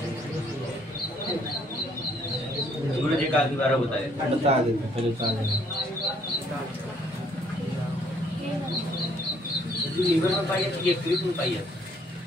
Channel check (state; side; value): normal; both; correlation 0.65